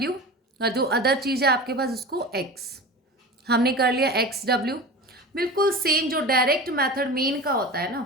और जो अदर चीज़ है आपके पास उसको X। हमने कर लिया XW। बिल्कुल सेम जो डायरेक्ट मेथड मीन का होता है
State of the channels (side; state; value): both; normal; correlation 0.31